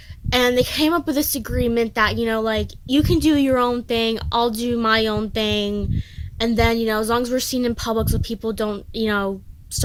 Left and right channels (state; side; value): identical; both; correlation 1.00